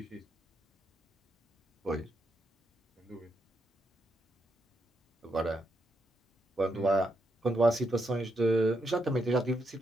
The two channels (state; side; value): normal; both; correlation 0.80